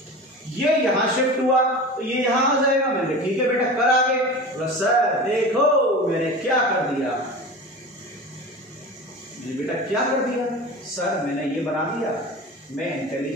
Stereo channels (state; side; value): normal; both; correlation 0.32